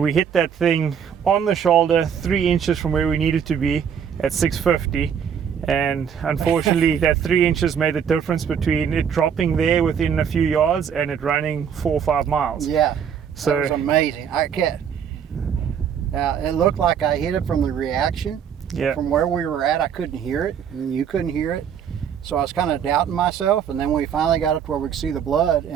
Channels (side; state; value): left; quieter; 7.9 dB